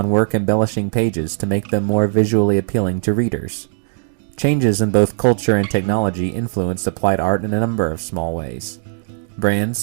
work embellishing pages to make them more visually appealing to readers. Changes in both culture and technology influenced applied art in a number of small ways.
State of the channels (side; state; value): left; silent; digital silence